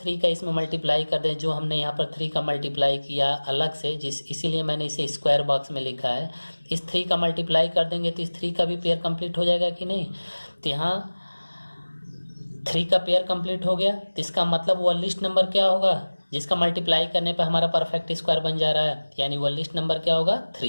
का इसमें मल्टीप्लाई कर दें, जो हमने यहाँ पर 3 का मल्टीप्लाई किया अलग से, इसीलिए मैंने इसे स्क्वायर बॉक्स में लिखा है। इस 3 का मल्टीप्लाई कर देंगे तो इस 3 का भी पेयर कंप्लीट हो जाएगा कि नहीं। तो यहाँ 3 का पेयर कंप्लीट हो गया, तो इसका मतलब वह लिस्ट नंबर क्या होगा, जिसका मल्टीप्लाई करने पर हमारा परफेक्ट स्क्वायर बन जा रहा है, यानी वो लिस्ट नंबर क्या होगा,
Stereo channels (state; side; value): inverted; both; correlation -1.00